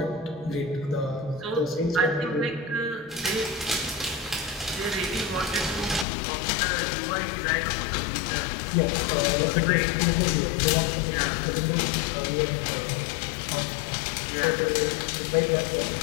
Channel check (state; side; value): drops out; right; at 6.1 s